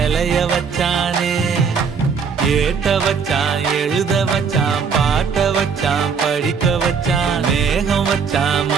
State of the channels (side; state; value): left; quieter; 6.0 dB